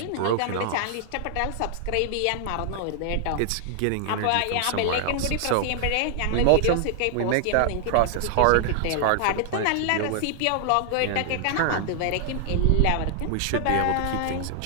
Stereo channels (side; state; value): both; different; correlation 0.00